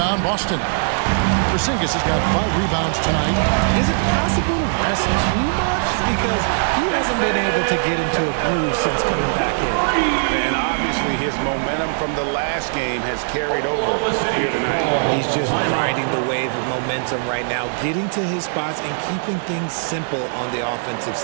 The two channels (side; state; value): left; silent; 66 dB below the other